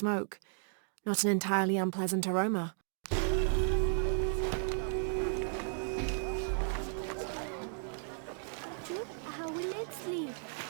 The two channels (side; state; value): left; silent; 55 dB below the other